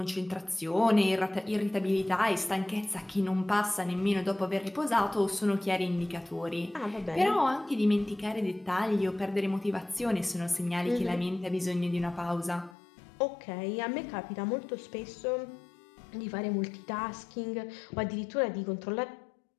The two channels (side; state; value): right; drops out; at 12.8 s